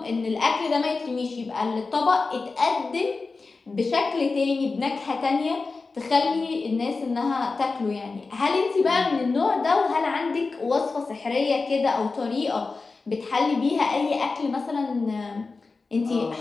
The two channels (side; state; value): right; quieter; 4.0 dB